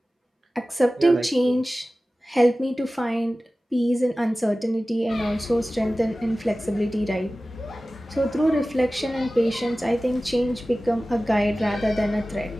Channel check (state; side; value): normal; both; correlation 0.96